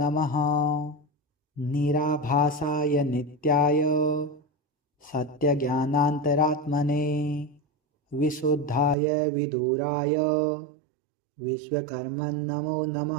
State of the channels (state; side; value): drops out; left; at 9.0 s